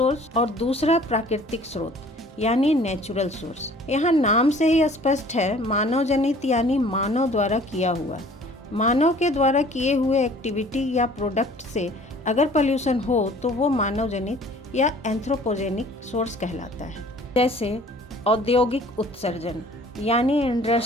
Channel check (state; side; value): normal; both; correlation 0.51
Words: और दूसरा प्राकृतिक स्रोत यानी नेचुरल सोर्स। यहाँ नाम से ही स्पष्ट है, मानव जनित यानी मानव द्वारा किया हुआ। मानव के द्वारा किए हुए एक्टिविटी या प्रोडक्ट से अगर पोल्यूशन हो तो वो मानव जनित या एंथ्रोपोजेनिक सोर्स कहलाता है। जैसे औद्योगिक उत्सर्जन यानी